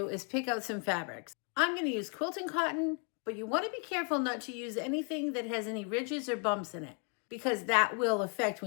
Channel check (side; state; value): right; quieter; 38.1 dB